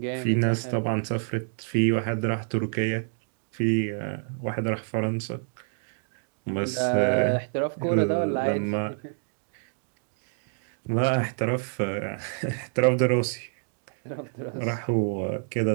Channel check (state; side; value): silent; left; digital silence